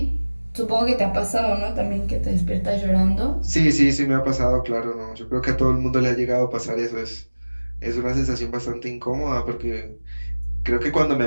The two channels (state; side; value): inverted; both; correlation -1.00